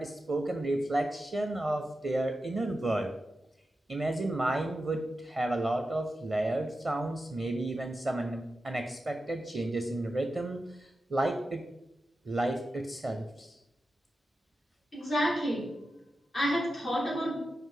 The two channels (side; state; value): both; normal; correlation 0.91